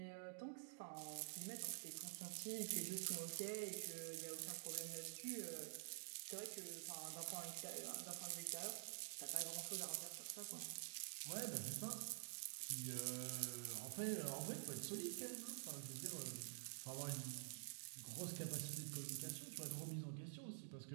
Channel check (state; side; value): silent; left; digital silence